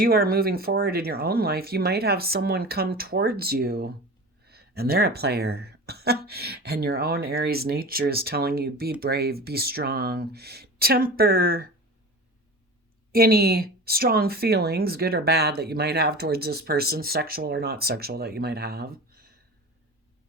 are moving forward in your own life, you might have someone come towards you and they're a player. And your own Aries nature is telling you, be brave, be strong, temper any strong feelings, good or bad, that you might have towards this person, sexual or not sexual, that you might have.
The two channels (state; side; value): normal; both; correlation 0.33